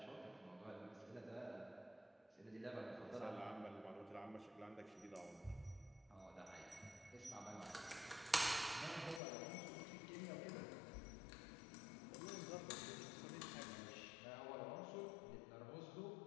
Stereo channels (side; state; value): right; drops out; at 9.2 s